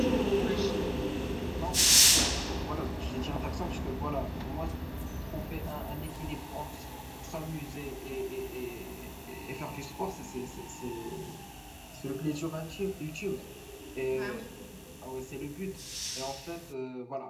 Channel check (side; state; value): both; identical; correlation 1.00